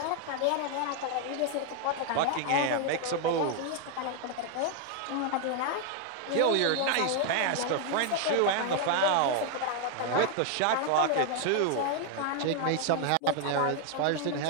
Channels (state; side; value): different; both; correlation 0.00